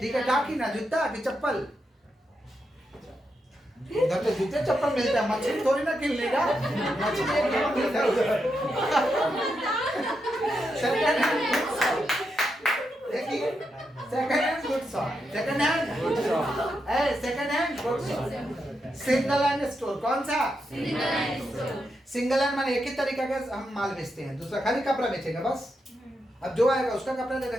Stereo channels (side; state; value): both; normal; correlation 0.84